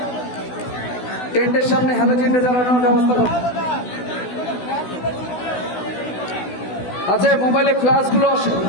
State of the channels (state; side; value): late; right; 16 ms